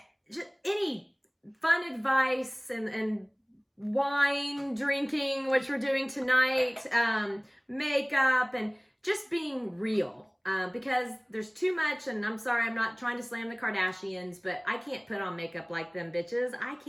Just any fun advice and wine drinking, which we're doing tonight, makeup, and just being real. Because there's too much, and I'm sorry, I'm not trying to slam the Kardashians, but I can't put on makeup like them bitches. I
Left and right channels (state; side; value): identical; both; correlation 1.00